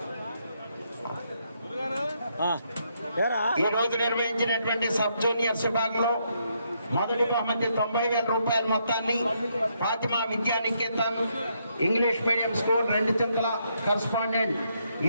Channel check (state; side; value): inverted; both; correlation -0.76